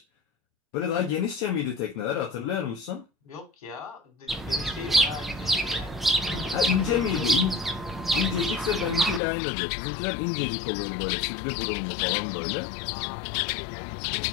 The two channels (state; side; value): drops out; right; at 9.2 s